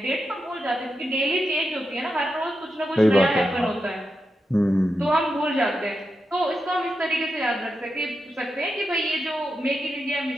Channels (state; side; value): normal; both; correlation 0.87